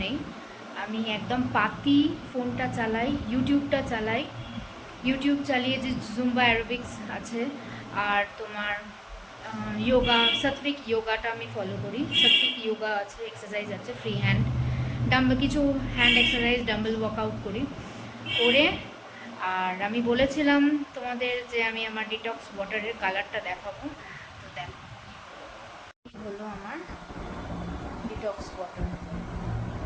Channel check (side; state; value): both; identical; correlation 1.00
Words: নেই। আমি একদম পাতি ফোনটা চালাই, ইউটিউবটা চালাই। ইউটিউব চালিয়ে যে জুম্বা অ্যারোবিক্স আছে আর তোমার যোগা, সাত্বিক যোগাটা আমি ফলো করি। সাত্বিক যোগা আছে, এক্সারসাইজ আছে, ফ্রি হ্যান্ড ডাম্বেল, কিছু হ্যান্ড এক্সারসাইজ, ডাম্বেল ওয়ার্কআউট করি করে। আর আমি বলেছিলাম তোমাদের যে আমি আমার ডিটক্স ওয়াটারের কালারটা দেখাবো, তো দেখো হলো আমার ডিটক্স ওয়াটার।